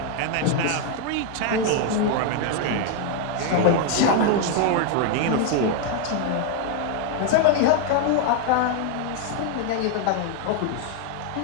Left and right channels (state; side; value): different; both; correlation 0.00